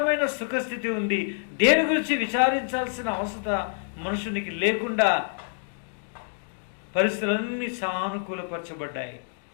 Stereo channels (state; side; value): silent; right; digital silence